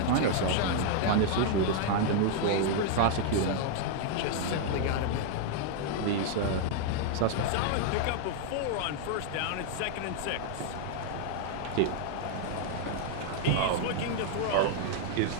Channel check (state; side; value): different; both; correlation 0.00